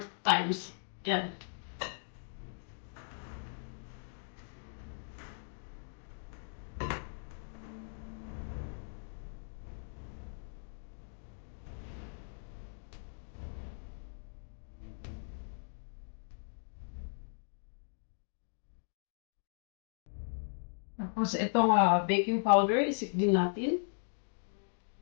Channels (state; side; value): silent; right; digital silence